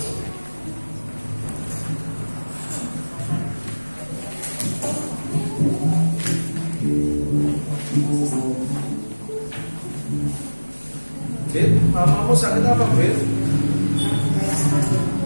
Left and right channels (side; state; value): both; inverted; correlation -1.00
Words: Fit, mamamu sakit apa, Fit?